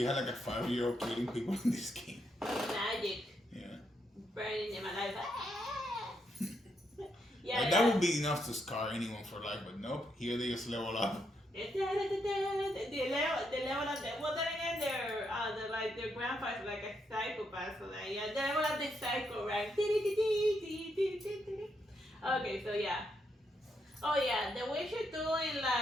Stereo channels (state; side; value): normal; both; correlation 0.79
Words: had like a 5-year-old killing people in this game. Magic. Yeah. burning in my life. Yeah, That would be enough to scar anyone for life, but nope. Here they just level up. They level up. Well, then again, their grandfather's like a psychopath, so that yeah, they level up the psycho rank. Okay, so yeah. Oh yeah, the Witcher 2 in